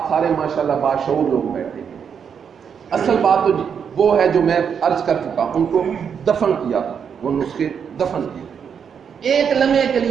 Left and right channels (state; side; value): quieter; left; 7.2 dB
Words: سارے ماشاءاللہ باشعور لوگ بیٹھے ہیں، اصل بات تو وہ ہے جو میں عرض کر چکا، ان کو دفن کیا تھا، وہ نسخے دفن کیے۔ ایک لمحے کے